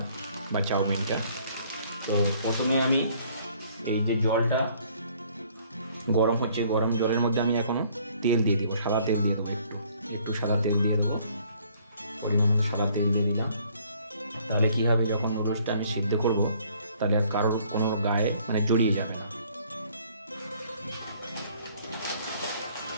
বা চাউমিনটা। তো প্রথমে আমি এই যে জলটা গরম হচ্ছে, গরম জলের মধ্যে আমি এখনও তেল দিয়ে দেবো, সাদা তেল দিয়ে দেবো, একটু সাদা তেল দিয়ে দেবো, পরিমাণ সাদা তেল দিয়ে দিলাম। তাহলে কী হবে, যখন নুডলসটা আমি সিদ্ধ করব তাহলে আর কারোর কোনো গায়ে জড়িয়ে যাবে না।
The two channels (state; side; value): inverted; both; correlation -0.60